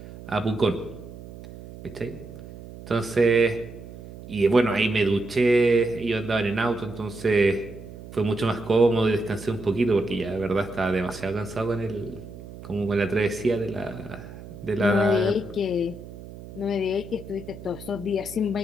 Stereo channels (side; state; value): right; noise; hum, 15 dB below the sound